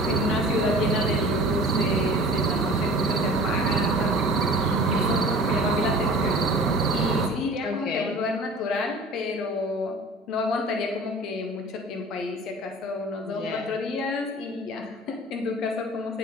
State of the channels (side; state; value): both; normal; correlation 0.43